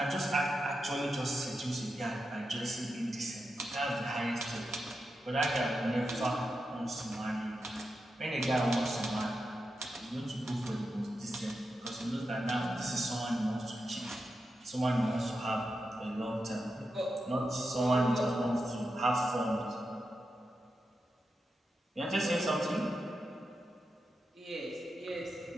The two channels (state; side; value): normal; both; correlation 0.88